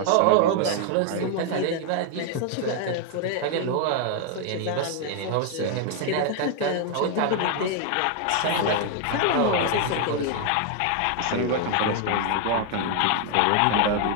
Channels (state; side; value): different; both; correlation 0.00